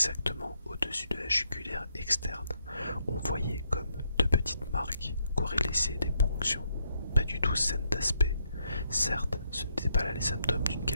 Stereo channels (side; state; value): both; inverted; correlation -0.76